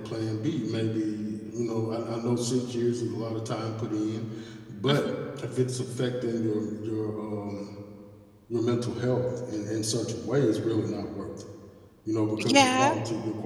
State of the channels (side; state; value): both; identical; correlation 1.00